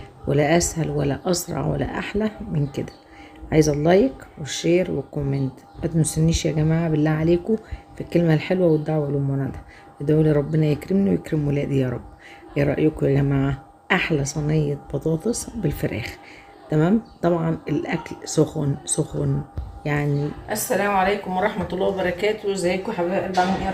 ولا اسهل ولا اسرع ولا احلى من كده. عايزه اللايك والشير والكومنت. ما تنسونيش يا جماعه بالله عليكم في الكلمه الحلوه والدعوه للمنى. ادعوا لي ربنا يكرمني ويكرم ولادي يا رب. ايه رايكم يا جماعه؟ احلى صينيه بطاطس بالفراخ. تمام، طبعا الاكل سخن سخن يعني. السلام عليكم ورحمه الله وبركاته. ازيكم يا حبايب قلبي؟ عاملين ايه؟ يا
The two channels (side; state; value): both; identical; correlation 1.00